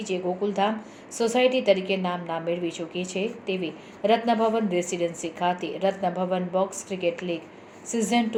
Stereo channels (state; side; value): identical; both; correlation 1.00